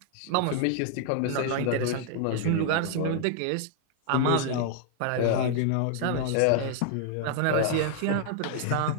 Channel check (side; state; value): both; different; correlation 0.00